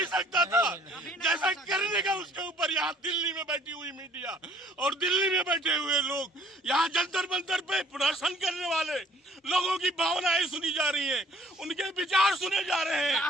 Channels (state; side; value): normal; both; correlation 0.57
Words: सकता था जैसा करने का उसके ऊपर। यहाँ दिल्ली में बैठी हुई मीडिया और दिल्ली में बैठे हुए लोग, यहाँ जंतर मंतर पे प्रदर्शन करने वाले लोगों की भावनाएं सुनी जा रही हैं, उनके विचार सुने जा रहे हैं,